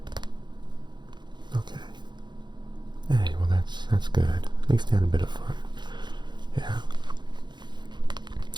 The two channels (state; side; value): late; left; 0.21 ms